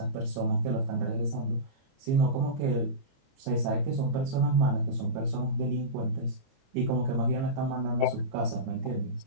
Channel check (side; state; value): left; late; 22 ms